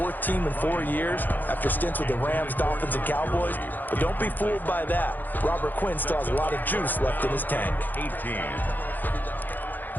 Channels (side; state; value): right; late; 0.086 ms